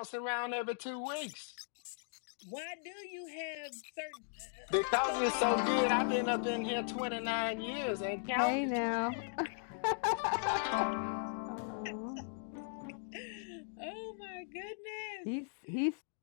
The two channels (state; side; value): silent; right; digital silence